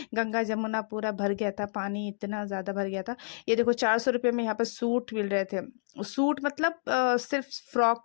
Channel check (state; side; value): silent; right; digital silence